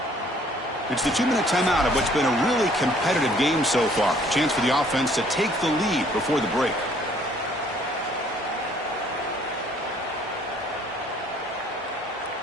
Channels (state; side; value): normal; both; correlation 0.60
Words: It's the 2-minute timeout of what's been a really competitive game so far. Chance for the offense to take the lead before the break.